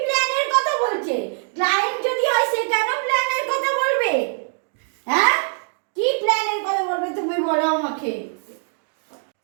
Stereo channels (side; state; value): left; silent; 61 dB below the other